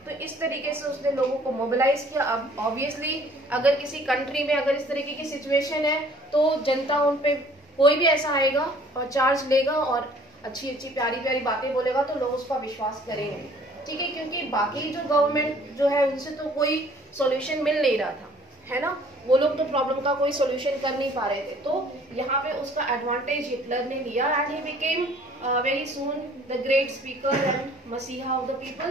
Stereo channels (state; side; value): normal; both; correlation 0.55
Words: तो इस तरीके से उसने लोगों को mobilise किया. अब obviously अगर किसी कंट्री में अगर इस तरीके की सिचुएशन है तो जनता उन पे कोई भी ऐसा आएगा और चार्ज लेगा और अच्छी अच्छी प्यारी प्यारी बातें बोलेगा तो लोग उस पर विश्वास करेंगे. ठीक है, क्योंकि बाकी जो गवर्नमेंट जो है उनसे तो कोई सॉल्यूशन मिल नहीं रहा था, है ना. वो लोग तो प्रॉब्लम का कोई सॉल्यूशन कर नहीं पा रहे थे. तो यहाँ पे उसका एडवांटेज हिटलर ने लिया and he became very soon the great speaker and messiah of the